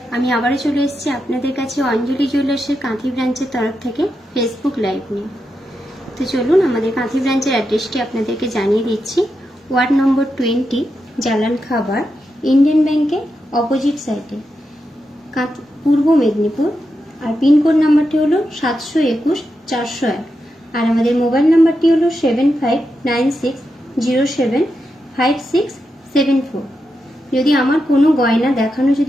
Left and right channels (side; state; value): both; normal; correlation 0.87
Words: আমি আবারও চলে এসেছি আপনাদের কাছে অঞ্জলি জুয়েলার্সের কাঁথি ব্রাঞ্চের তরফ থেকে ফেসবুক লাইভ নিয়ে। তো চলুন আমাদের কাঁথি ব্রাঞ্চের অ্যাড্রেসটি আপনাদেরকে জানিয়ে দিচ্ছি। ওয়ার্ড নম্বর 20, জালান খাবার, ইন্ডিয়ান ব্যাংকের অপোজিট সাইডে, পূর্ব মেদিনীপুর। আর পিনকোড নাম্বারটি হলো 721-401। আর আমাদের মোবাইল নাম্বারটি হলো 7596075674। যদি আমার কোনো গয়না দেখানো